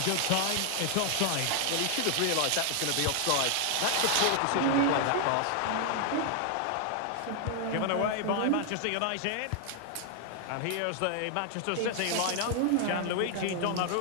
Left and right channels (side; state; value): both; different; correlation 0.00